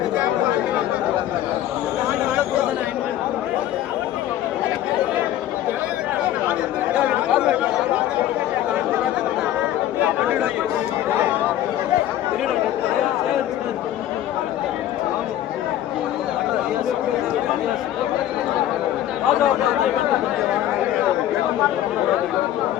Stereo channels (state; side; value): quieter; right; 12.4 dB